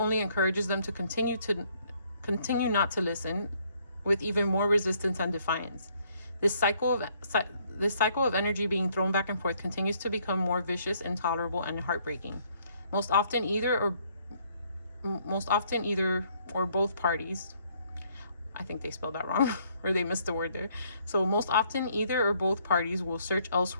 encourages them to continue not to listen, with even more resistance and defiance. This cycle of energy being thrown back and forth continues to become more vicious, intolerable, and heartbreaking. Most often either or both parties, I think they spelled that wrong, or they missed the word there. So most often either or both parties will search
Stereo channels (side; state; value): both; inverted; correlation -0.67